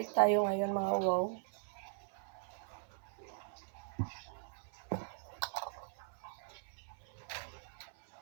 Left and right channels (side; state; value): left; silent; 51 dB below the other